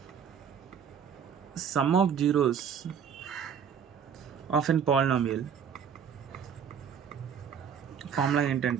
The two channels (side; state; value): left; quieter; 7.5 dB